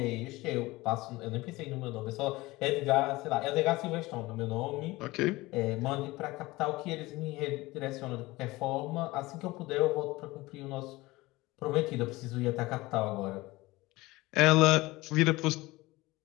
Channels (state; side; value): quieter; right; 20.4 dB